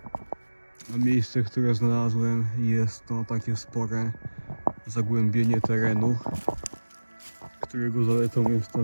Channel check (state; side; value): inverted; both; correlation -1.00